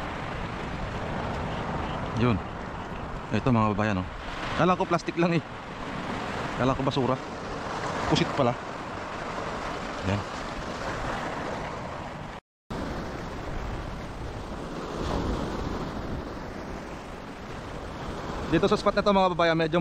Yun. Ito mga kababayan, oh. Kala ko plastic lang eh. Kala ko basura. Pusit pala. Yan. Dito sa spot na to mga kababayan, medyo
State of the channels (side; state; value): both; identical; correlation 1.00